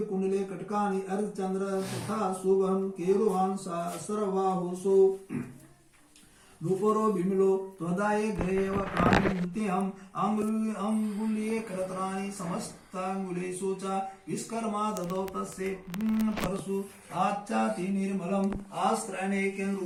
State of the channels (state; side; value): identical; both; correlation 1.00